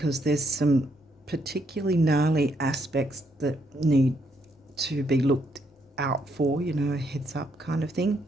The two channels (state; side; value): normal; both; correlation 0.74